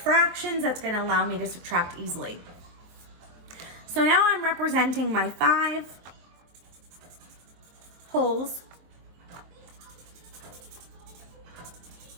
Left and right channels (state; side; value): late; left; 23 ms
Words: that's going to allow me to subtract easily. So now I'm representing my 5 holes,